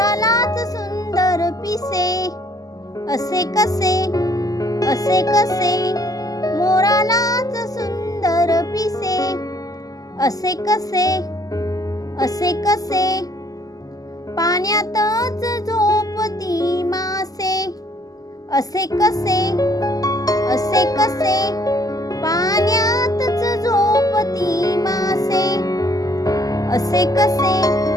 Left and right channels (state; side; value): late; right; 0.17 ms